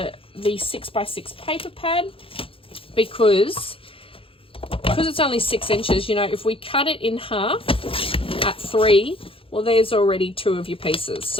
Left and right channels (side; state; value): right; late; 0.27 ms